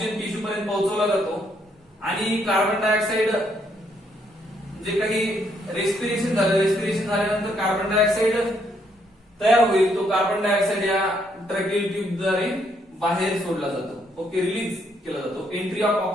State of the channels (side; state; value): both; normal; correlation 0.72